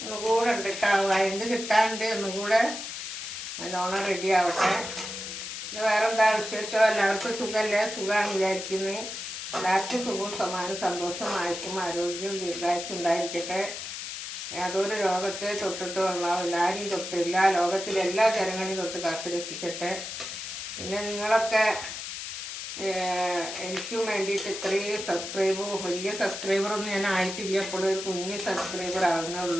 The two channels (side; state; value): left; noise; hiss, 7 dB below the sound